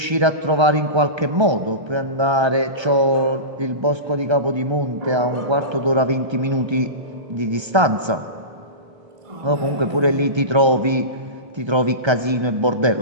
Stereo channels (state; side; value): late; left; 1.3 ms